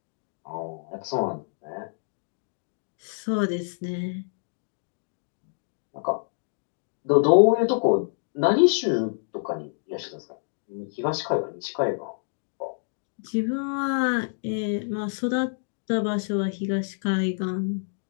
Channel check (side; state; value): right; silent; digital silence